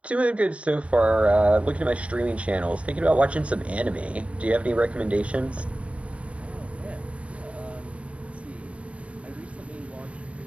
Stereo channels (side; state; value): left; late; 0.063 ms